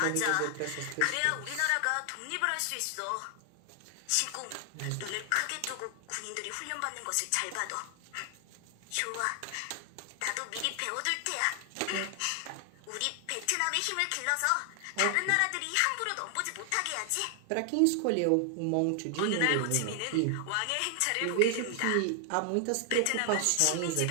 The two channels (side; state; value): both; different; correlation 0.00